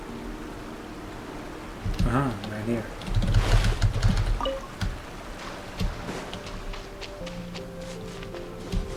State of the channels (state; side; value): identical; both; correlation 1.00